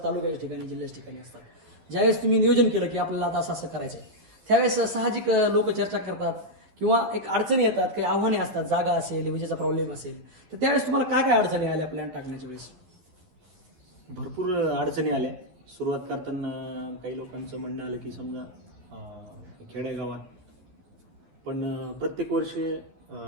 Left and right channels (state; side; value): late; left; 12 ms